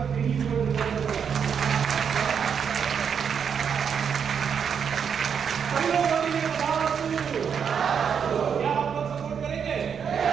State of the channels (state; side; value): quieter; left; 7.2 dB